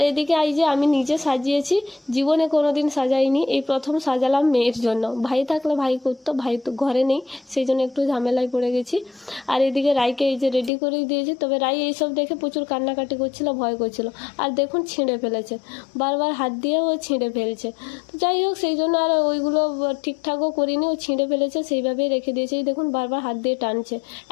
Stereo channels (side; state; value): right; drops out; at 10.7 s